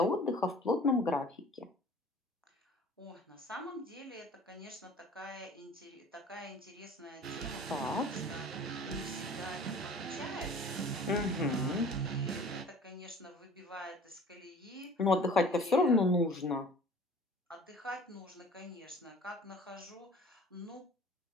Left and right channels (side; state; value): both; normal; correlation 0.47